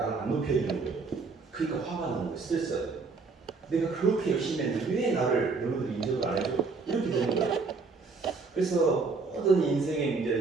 안 높여주는 거예요. 그러니까 화가 나는 거예요. 스트레스가 돼요. 내가 그렇게 열심히 했는데 왜 나를 너희들이 인정을 안 해줘? 이렇게 되는 거예요. 그래서 모든 인생의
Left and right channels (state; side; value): quieter; left; 4.3 dB